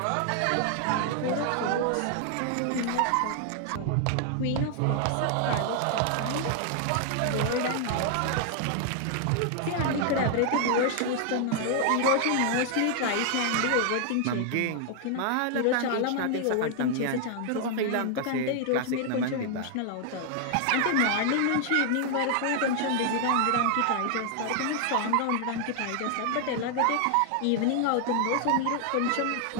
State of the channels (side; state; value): both; different; correlation 0.00